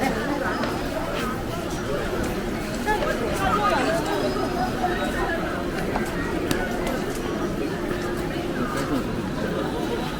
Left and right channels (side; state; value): both; identical; correlation 1.00